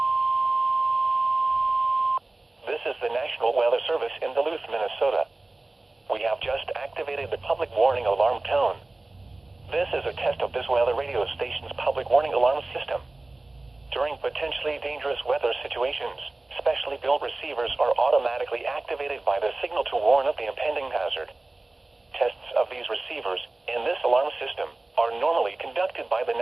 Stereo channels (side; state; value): left; quieter; 3.0 dB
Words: This is the National Weather Service in Duluth, Minnesota. We have just activated the public warning alarm tone. This is a test of this weather radio station's public warning alarm system. During potentially dangerous weather situations, specially built receivers are automatically activated by the signal to warn of the impending hazard. Tests of these receivers in this alarm system are normally conducted by the